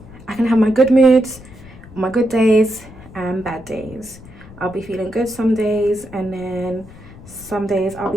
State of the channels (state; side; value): noise; left; rumble, 19 dB below the sound